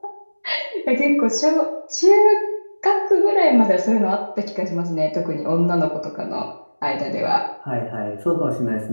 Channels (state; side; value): inverted; both; correlation -1.00